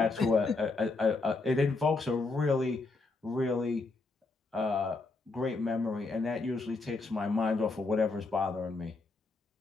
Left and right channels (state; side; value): quieter; right; 3.7 dB